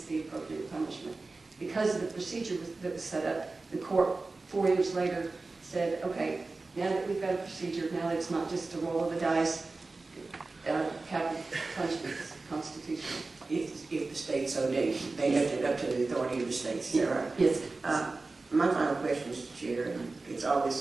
the appropriate punishment. Because of the procedure that was set up, the court 4 years later said, okay, now that we've got a procedure, now that it's not just a roll of the dice, capital punishment is constitutional. If the state so did, they left it up to the authority of the states. Is that right? Yes. My final question, Mr. Chair, and it's always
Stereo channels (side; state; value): left; quieter; 3.6 dB